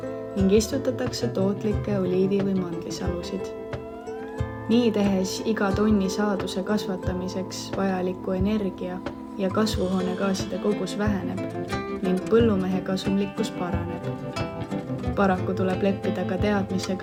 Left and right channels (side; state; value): both; identical; correlation 1.00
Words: ning istutatakse tootlikke oliivi- või mandlisalusid. Nii tehes iga tonni saaduse kasvatamiseks vajaliku energia ja kasvuhoonegaaside kogus väheneb ning põllumehe kasumlikkus paraneb. Paraku tuleb leppida ka